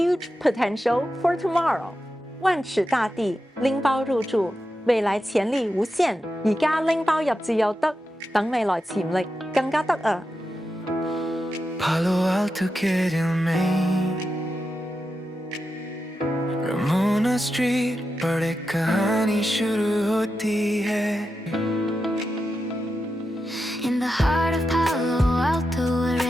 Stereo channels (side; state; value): both; normal; correlation 0.89